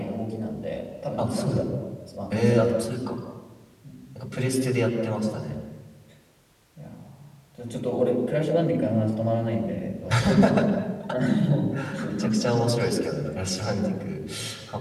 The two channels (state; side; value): identical; both; correlation 1.00